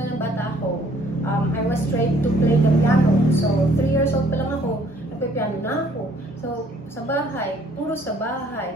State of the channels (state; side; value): normal; both; correlation 0.61